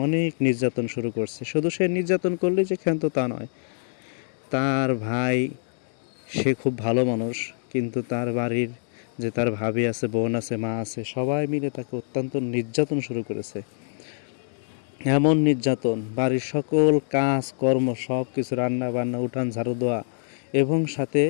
অনেক নির্যাতন শুরু করছে। শুধু সে নির্যাতন করলেই যে ক্ষান্ত তা নয়, তার ভাই, সে খুব ভালো মানুষ, কিন্তু তার বাড়ির যে তার ভাবি আছে, বোন আছে, মা আছে, সবাই মিলে তাকে অত্যন্ত নির্যাতন শুরু করেছে। এমন নির্যাতন, বাড়ির সকল কাজ কর্ম সব কিছু, রান্না বান্না, উঠান ঝাড়ু দেওয়া, এবং সাথে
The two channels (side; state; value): right; silent; digital silence